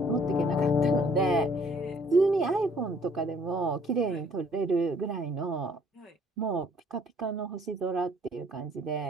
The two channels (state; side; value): normal; both; correlation 0.60